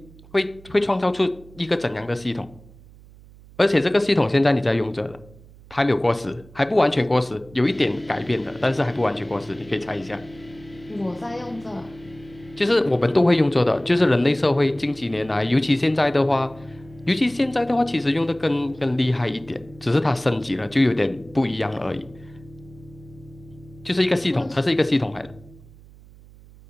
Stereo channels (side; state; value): right; noise; hum, 23 dB below the sound